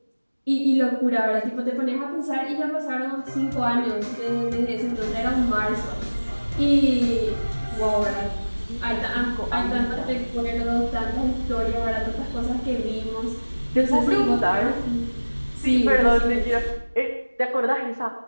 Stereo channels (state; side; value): inverted; both; correlation -1.00